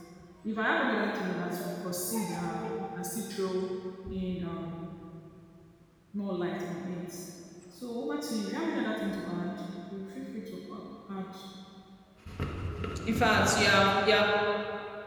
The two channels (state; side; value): identical; both; correlation 1.00